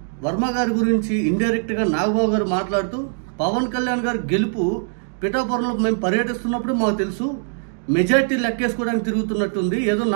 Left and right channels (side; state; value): left; silent; 65 dB below the other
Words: వర్మ గారి గురించి ఇండైరెక్ట్గా నాగబాబు గారు మాట్లాడుతూ పవన్ కళ్యాణ్ గారి గెలుపు పిఠాపురంలో మేము పర్యటిస్తున్నప్పుడు మాకు తెలుసు, మెజార్టీ లెక్కేసుకోవడానికి తిరుగుతున్నట్టుంది, ఏదో